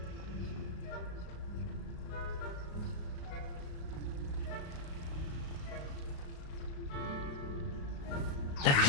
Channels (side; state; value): right; late; 35 ms